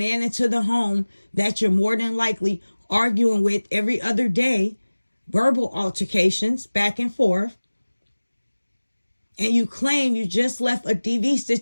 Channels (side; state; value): both; inverted; correlation -1.00